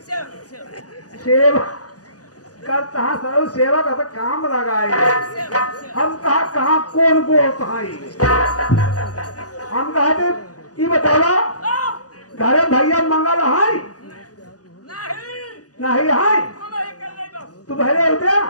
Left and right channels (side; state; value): right; late; 0.68 ms